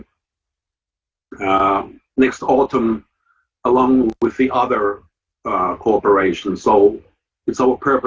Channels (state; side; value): identical; both; correlation 1.00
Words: next autumn along with the other cooperation. So it's our